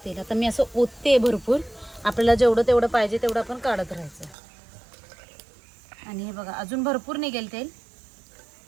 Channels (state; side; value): drops out; left; at 4.4 s